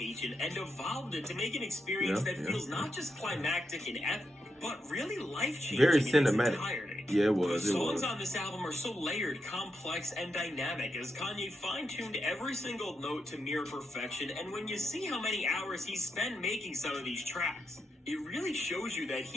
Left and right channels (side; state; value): both; normal; correlation 0.85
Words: and evolved it to make an experience that feels not just climactic and epic, but really life-changing. Very in its cinematic. entirety. Yeah, it was. The It songs was. on this album are so layered, complex, and dynamic as Kanye fine-tuned every single note to near perfection, and when you see how many hours he spent making some of these tracks, it really shows you that